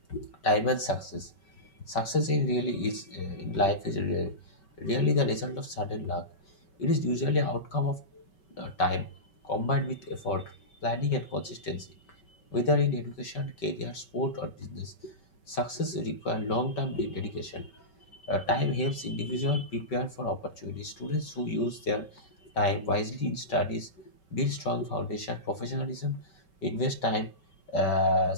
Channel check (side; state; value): right; late; 5.3 ms